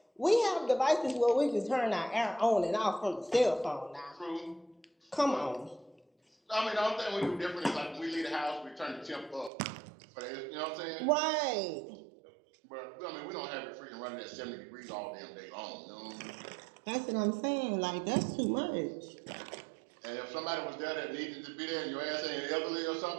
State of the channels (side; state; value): left; drops out; at 9.5 s